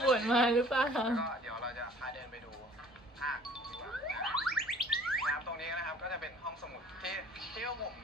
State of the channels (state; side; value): normal; both; correlation 0.52